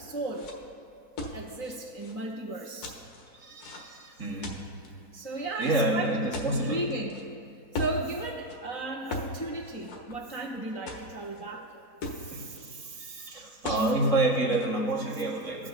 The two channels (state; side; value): late; right; 3.8 ms